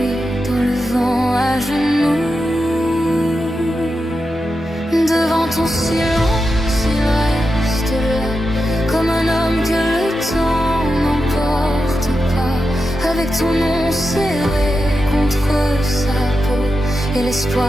dans le vent, à genoux. Devant ton silence, il reste là, comme un homme que le temps n'emporte pas, avec ton nom serré contre sa peau et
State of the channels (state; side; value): normal; both; correlation 0.89